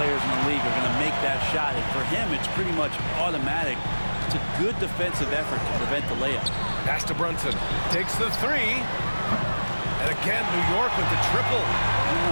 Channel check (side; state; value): both; inverted; correlation -1.00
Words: in the league are going to make that shot, and for him, it's pretty much automatic. It's a good defensive effort to prevent the layup. Pass to Brunson. Takes the 3. And again, New York with the triple. I don't